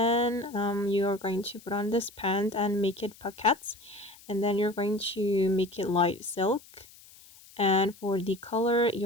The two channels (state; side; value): noise; left; hiss, 23 dB below the sound